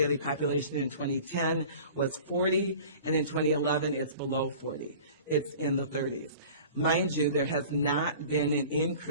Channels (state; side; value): inverted; both; correlation -0.43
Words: population in 2010 was 40, and in 2011 it's below 40. It's in the 30s. Mind you, there has not been an